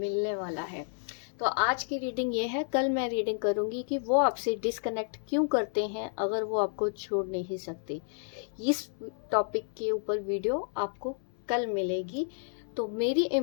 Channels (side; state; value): right; silent; 57 dB below the other